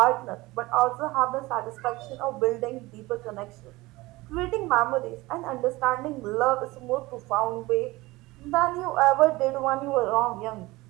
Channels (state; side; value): quieter; left; 20.6 dB